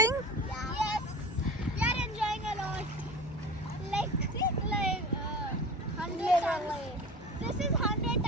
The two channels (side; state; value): both; normal; correlation 0.35